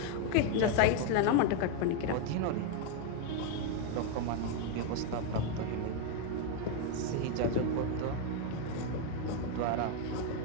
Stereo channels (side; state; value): both; different; correlation 0.01